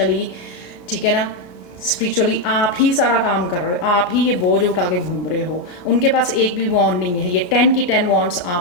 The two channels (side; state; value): right; late; 34 ms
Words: ठीक है ना, स्पिरिचुअली आप ही सारा काम कर रहे हो, आप ही ये बोझ उठा के घूम रहे हो। उनके पास एक भी वॉन्ड नहीं है, ये 10 की 10 वॉन्ड्स